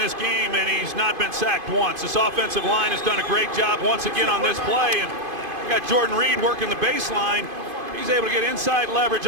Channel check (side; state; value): left; late; 2.5 ms